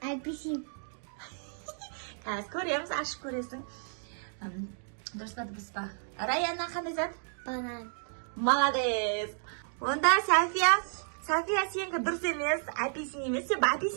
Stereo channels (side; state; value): left; silent; digital silence